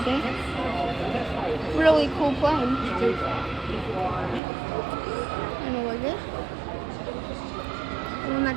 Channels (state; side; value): drops out; left; at 4.4 s